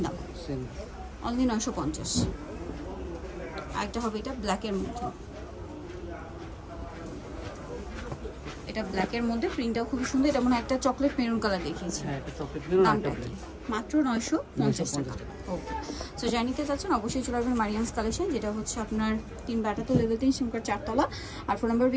দাম অনলি 950। আরেকটা হবে এটা ব্ল্যাকের মধ্যে, এটা ব্ল্যাকের মধ্যে, প্রিন্টটাও খুবই সুন্দর। এটা মনে হয় একটা চকলেট মেরুন কালার দেখিয়েছি। দামটা মাত্র 950 টাকা। ওকে, সো জানিতে চাচ্ছেন অবশ্যই চলে আসবেন মারিয়ামস কালেকশন, যেটা হচ্ছে আপনার 3 বাটাতে লেভেল 3 সিমকার 4 তলা। আর ফোন নাম্বার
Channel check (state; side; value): identical; both; correlation 1.00